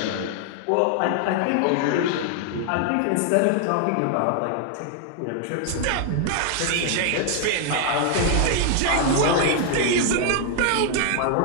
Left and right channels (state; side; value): different; both; correlation 0.00